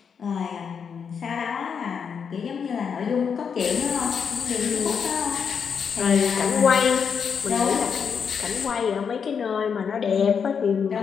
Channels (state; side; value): quieter; right; 6.6 dB